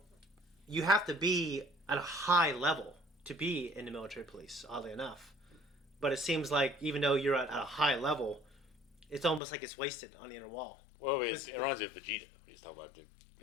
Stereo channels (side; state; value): right; drops out; at 9.4 s